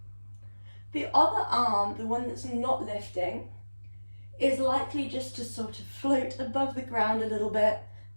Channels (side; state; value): both; inverted; correlation -1.00